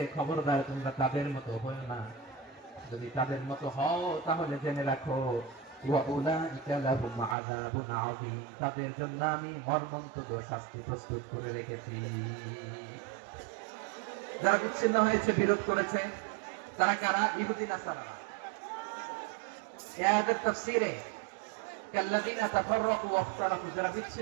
খবরদার তোমরা তাদের মতো হও না। যদি তাদের মতো হও তাহলে জেনে রাখো, ওয়াউলাইকা লাহুম আযাবুন আযীম, তাদের জন্য আমি মর্মন্তুদ শাস্তি প্রস্তুত করে রেখেছি। যারা বিচ্ছিন্ন হয়েছে, বিরোধ করেছে, তারা কারা? ইহুদি নাসারা। এই আয়াতের তাফসীরে কাল্লাযীনা তাফাররাকু ওয়াখতালাফু, যারা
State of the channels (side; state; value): left; drops out; at 7.4 s